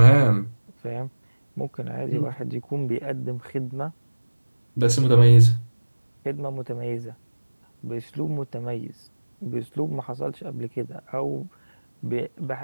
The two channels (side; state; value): both; inverted; correlation -1.00